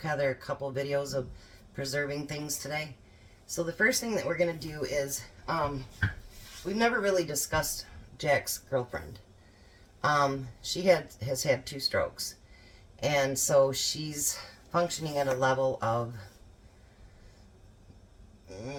a couple videos of preserving things today. So, the first thing that we're going to do is, we've never really discussed Jack's girlfriend. She has had 2 strokes. And so, she's functioning at a level of...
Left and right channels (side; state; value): both; identical; correlation 1.00